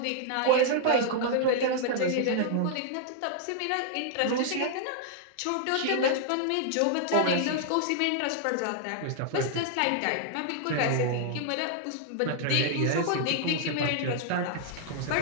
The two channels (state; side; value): different; both; correlation -0.01